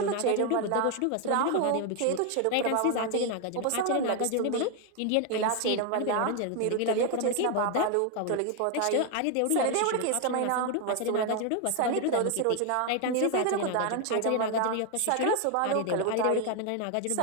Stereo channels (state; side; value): different; both; correlation 0.01